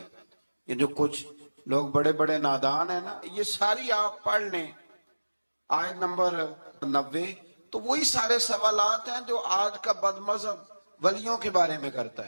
یہ جو کچھ لوگ بڑے بڑے نادان ہیں نا, یہ ساری آپ پڑھ لیں آیت نمبر 90, تو وہی سارے سوالات ہیں جو آج کا بد مذہب ولیوں کے بارے میں کرتا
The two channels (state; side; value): inverted; both; correlation -1.00